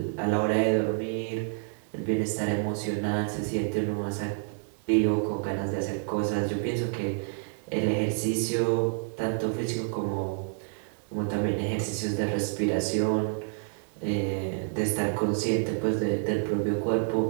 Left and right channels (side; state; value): left; silent; 59 dB below the other